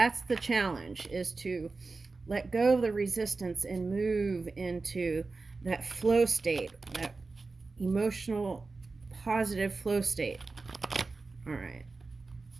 the challenge, is to let go of the resistance and move into that flow state, that emotional, positive flow state. All right.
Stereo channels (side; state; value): left; quieter; 3.8 dB